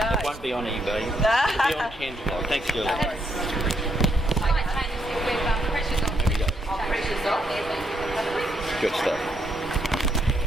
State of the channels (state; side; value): normal; both; correlation 0.76